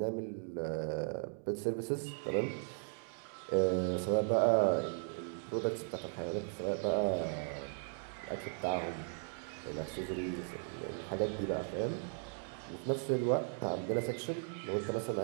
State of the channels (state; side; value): silent; left; 53 dB below the other